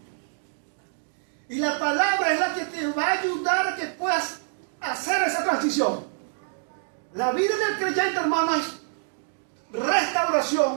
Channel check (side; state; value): left; silent; digital silence